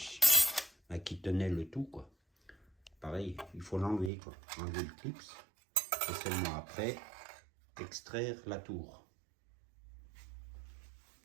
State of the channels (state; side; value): drops out; left; at 4.1 s